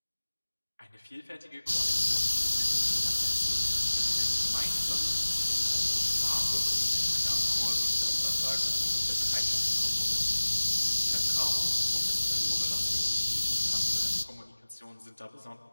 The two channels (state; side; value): inverted; both; correlation -1.00